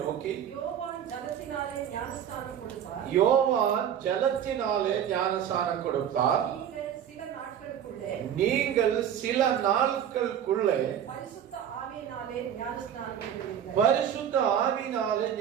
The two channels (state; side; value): quieter; left; 9.3 dB